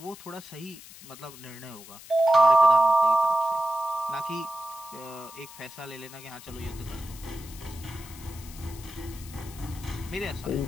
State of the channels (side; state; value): left; noise; hiss, 17 dB below the sound